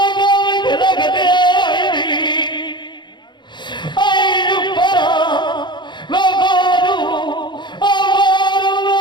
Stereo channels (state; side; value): late; right; 0.22 ms